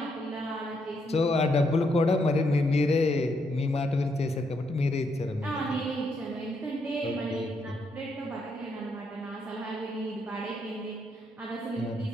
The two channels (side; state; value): both; normal; correlation 0.76